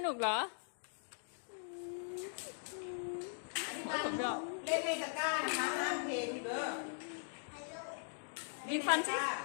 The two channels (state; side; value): silent; right; digital silence